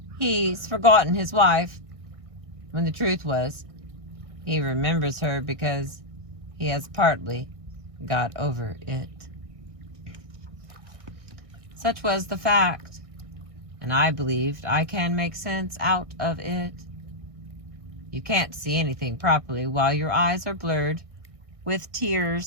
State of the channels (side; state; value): left; late; 1.6 ms